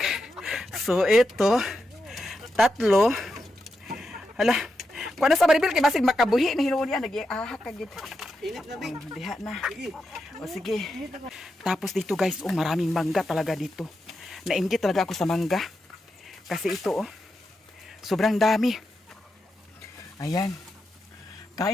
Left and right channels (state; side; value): normal; both; correlation 0.86